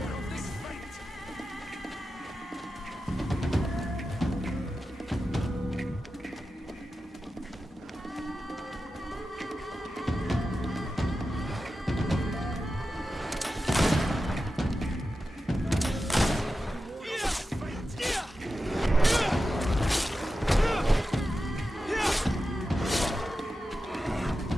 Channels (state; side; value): normal; both; correlation 0.92